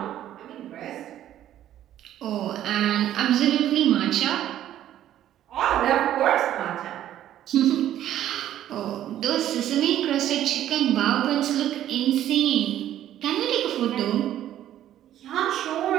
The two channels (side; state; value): left; quieter; 12.0 dB